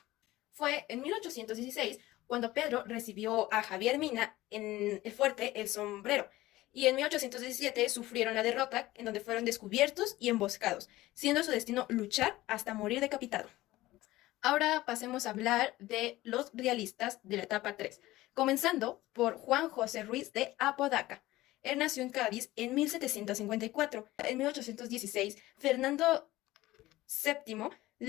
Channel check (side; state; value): right; quieter; 17.2 dB